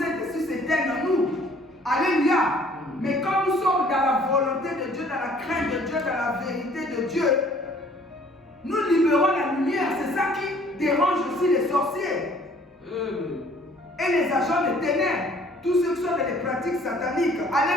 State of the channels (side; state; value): both; normal; correlation 0.57